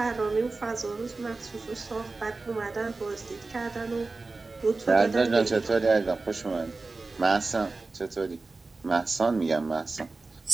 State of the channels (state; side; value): quieter; left; 3.7 dB